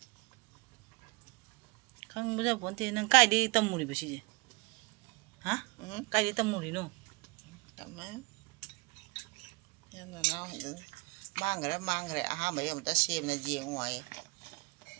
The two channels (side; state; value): left; quieter; 27.6 dB